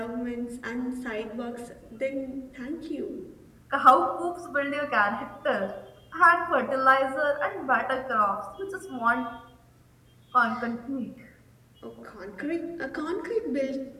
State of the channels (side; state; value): both; identical; correlation 1.00